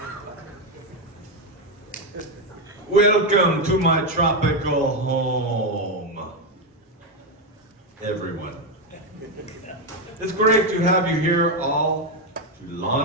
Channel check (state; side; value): normal; both; correlation 0.07